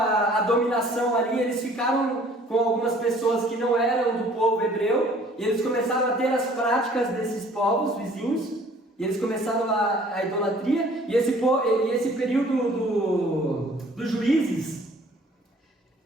dominação ali, eles ficaram com algumas pessoas que não eram do povo hebreu, e eles começaram a ter as práticas desses povos vizinhos, e eles começaram a idolatria, e esse período dos juízes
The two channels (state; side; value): normal; both; correlation 0.55